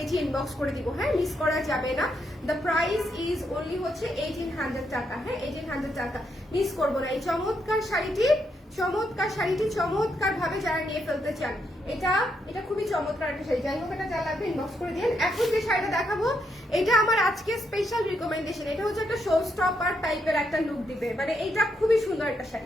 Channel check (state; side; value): normal; both; correlation 0.79